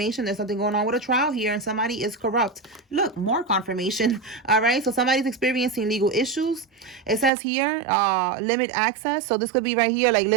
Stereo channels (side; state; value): left; drops out; at 7.3 s